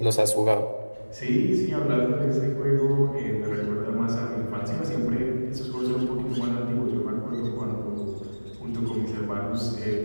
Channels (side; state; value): both; inverted; correlation -1.00